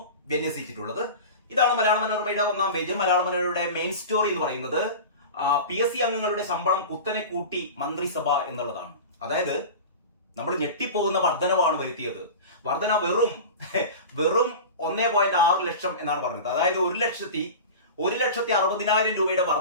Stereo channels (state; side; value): inverted; both; correlation -0.31